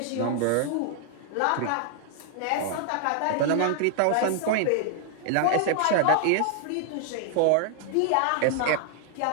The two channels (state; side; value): different; both; correlation 0.00